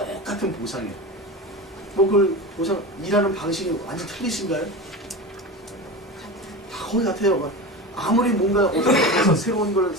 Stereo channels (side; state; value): both; normal; correlation 0.27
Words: 보상에. 뭐 그걸 보상 일하는 방식이 완전 틀리신가요? 다 거의 같아요. 아무리 뭔가 어떤 곳에서 새로운 걸